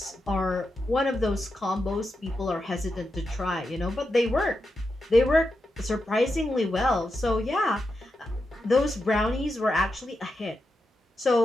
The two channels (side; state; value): both; normal; correlation 0.87